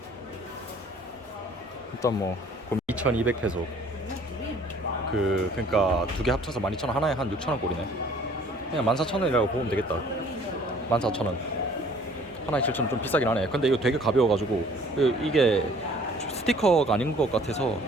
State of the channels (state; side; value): normal; both; correlation 0.55